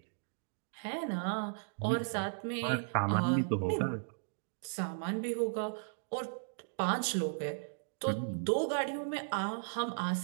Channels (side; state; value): left; silent; digital silence